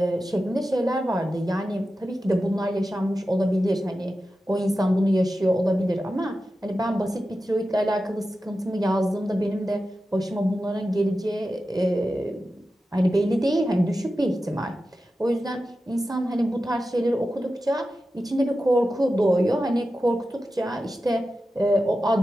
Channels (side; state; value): both; normal; correlation 0.92